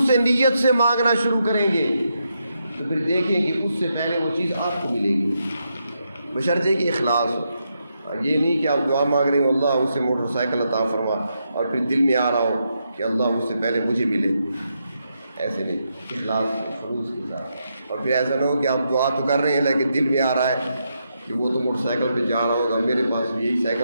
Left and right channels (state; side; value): inverted; both; correlation -0.82